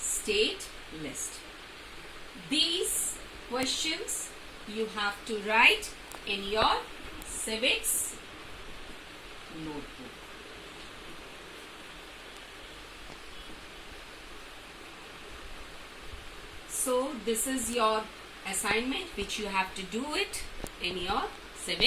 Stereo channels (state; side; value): identical; both; correlation 1.00